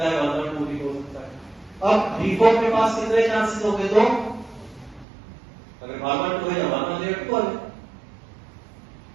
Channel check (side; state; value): left; drops out; at 5.1 s